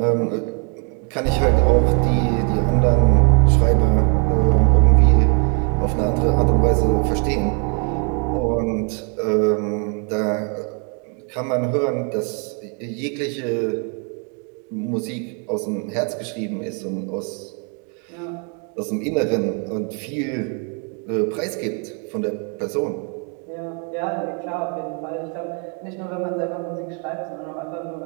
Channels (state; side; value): quieter; left; 38.9 dB